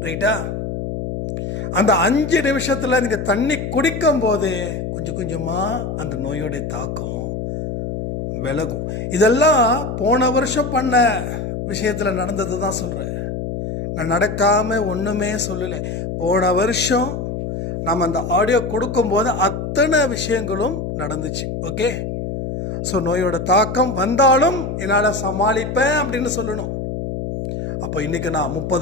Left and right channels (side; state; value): left; noise; hum, 5 dB below the sound